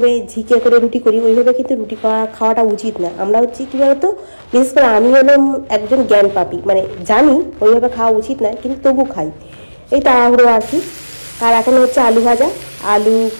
ঝিকে করে রুটি করি, ওইভাবে কিন্তু রুটি খাওয়াটা উচিত না। আমরা হচ্ছে কী বলতো, বিশেষ করে আমি হলাম একজন জ্ঞান পাপী, মানে জানি ওইভাবে খাওয়া উচিত না, কিন্তু তবু খাই, এই তাড়াহুড়ো আর কি। আর এখন হচ্ছে আলু ভাজা,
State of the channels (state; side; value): inverted; both; correlation -1.00